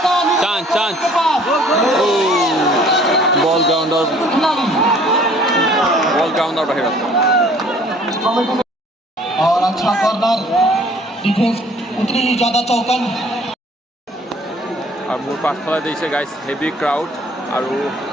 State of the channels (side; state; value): both; normal; correlation 0.55